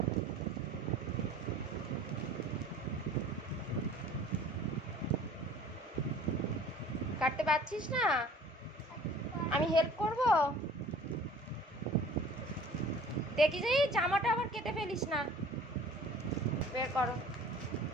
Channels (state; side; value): normal; both; correlation 0.47